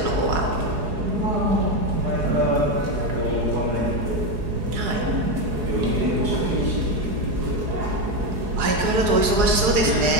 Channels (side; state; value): left; late; 4.8 ms